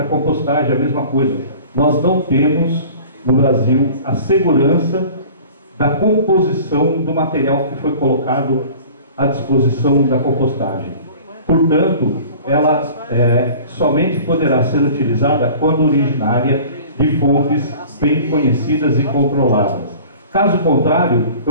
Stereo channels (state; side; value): inverted; both; correlation -0.44